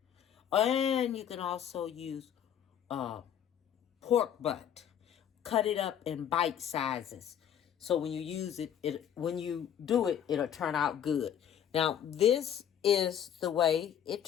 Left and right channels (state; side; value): quieter; right; 9.4 dB